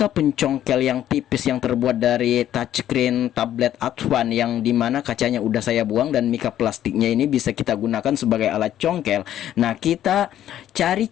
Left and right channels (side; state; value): right; quieter; 11.6 dB